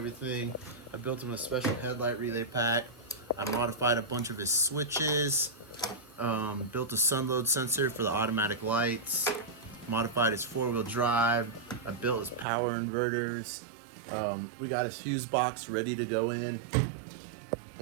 I built him a special headlight relay pack. I modified a bunch of his switches, built a sun load sensor for the automatic lights, modified his four-wheel drive. I built his power inverters. We got his fuse box ready to go in.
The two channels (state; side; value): drops out; left; at 12.5 s